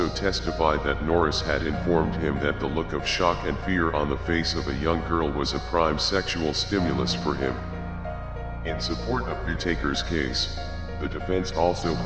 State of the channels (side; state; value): both; identical; correlation 1.00